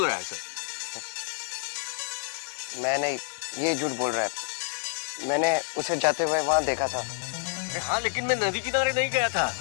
रहा है सर। मैं नहीं, ये झूठ बोल रहा है। मैंने उसे जाते हुए वहां देखा था। हाँ लेकिन मैं नदी किनारे नहीं गया था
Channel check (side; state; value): right; silent; digital silence